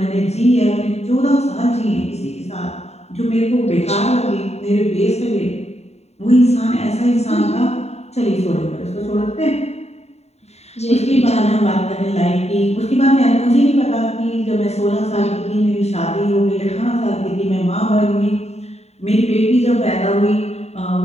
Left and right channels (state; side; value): late; right; 0.31 ms